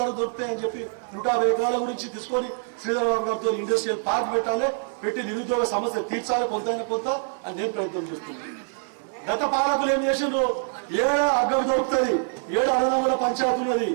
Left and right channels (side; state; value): left; silent; 62 dB below the other